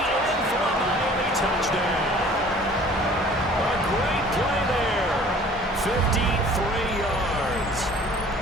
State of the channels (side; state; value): both; normal; correlation 0.50